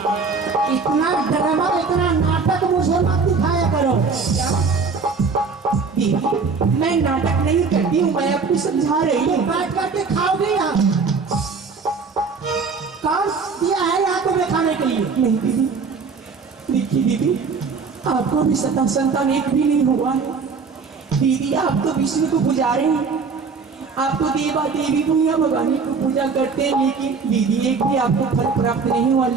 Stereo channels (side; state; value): left; quieter; 4.9 dB